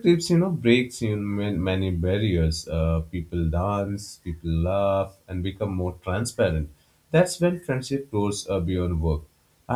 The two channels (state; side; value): identical; both; correlation 1.00